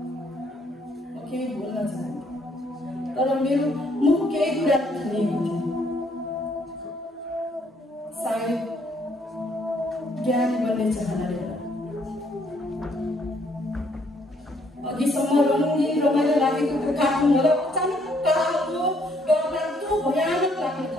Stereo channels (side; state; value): both; normal; correlation 0.68